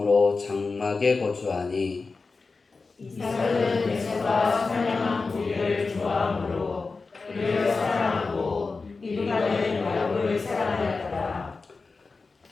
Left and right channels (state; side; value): quieter; right; 4.1 dB